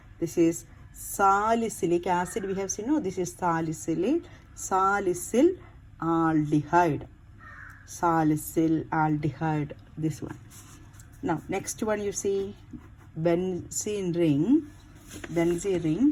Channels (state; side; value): identical; both; correlation 1.00